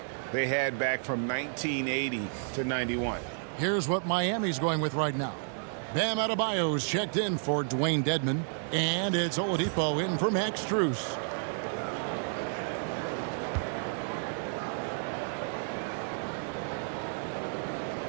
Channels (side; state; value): left; silent; digital silence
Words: they had back from 1980 to 91. Here's what Miami's going with right now. Bam Adebayo's checked in for Dwayne Dedmon. And it's Oladipo in for Max Strus.